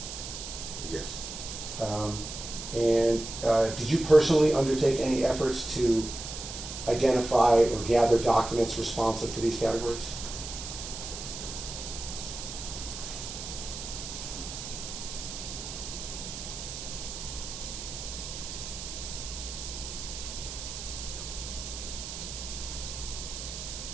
Yes. Did you personally undertake any efforts to identify or gather documents responsive to these categories?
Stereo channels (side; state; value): right; noise; hiss, 8 dB below the sound